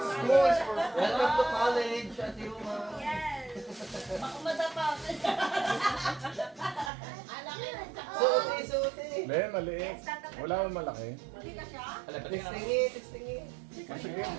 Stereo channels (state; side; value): drops out; left; at 6.9 s